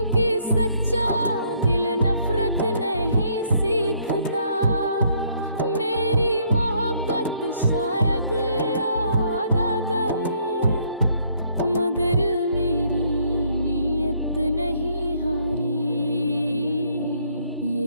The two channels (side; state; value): both; inverted; correlation -0.67